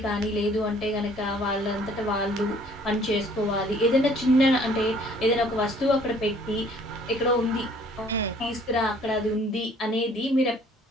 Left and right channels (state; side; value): normal; both; correlation 0.57